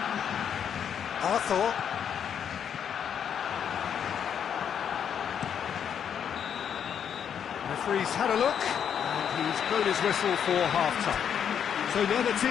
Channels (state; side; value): quieter; right; 8.3 dB